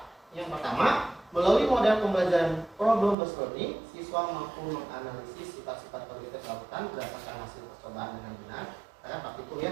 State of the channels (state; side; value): drops out; left; at 3.2 s